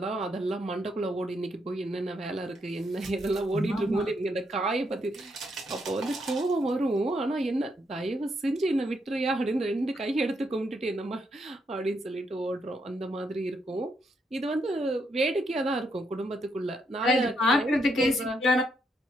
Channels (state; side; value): normal; both; correlation 0.77